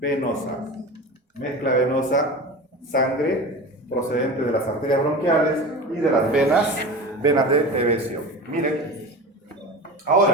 Mezcla venosa, sangre procedente de las arterias bronquiales y de las venas de evesión. Miren,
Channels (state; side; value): normal; both; correlation 0.31